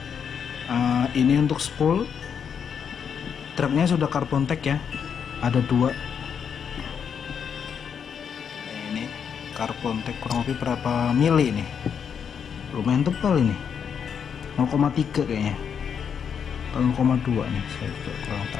ini untuk spool. Truknya sudah carbon tag ya, ada dua. Ini carbon tag kurang lebih berapa mili nih, lumayan tebal ini, 0,3 kayaknya, 0,2 nih, saya juga kurang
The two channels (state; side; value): quieter; right; 7.3 dB